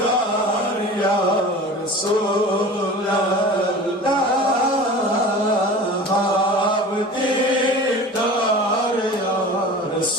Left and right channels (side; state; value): both; normal; correlation 0.38